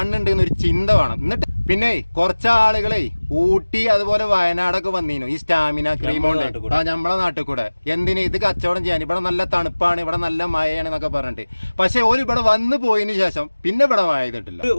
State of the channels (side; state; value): both; inverted; correlation -1.00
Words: എന്നൊരു ചിന്ത വേണം. എന്നിട്ട് പിന്നെ കുറച്ച് ആളുകളെ ഊട്ടി അതുപോലെ വയനാടൊക്കെ വന്നീനു ഈ സ്റ്റാമിന ക്രീം കൊണ്ട് നമ്മളെ നാട്ടിൽ കൂടെ. എന്തിന് ഇത് കച്ചവടം ചെയ്യാൻ, ഇവിടെ നല്ല തണുപ്പാണ്, ഇവിടെ നല്ല മഴയാണ് എന്നൊക്കെ പറഞ്ഞിട്ട്. പക്ഷെ ഓര് ഇവിടെ വന്നു പോയതിനു ശേഷം പിന്നെ ഇവിടെ മഴ ചെയ്തിട്ടില്ല.